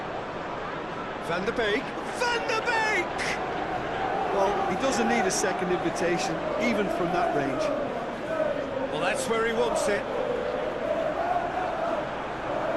Van der Beek. Van der Beek! Well, he doesn't need a second invitation, even from that range. Well, that's where he wants it.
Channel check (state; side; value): identical; both; correlation 1.00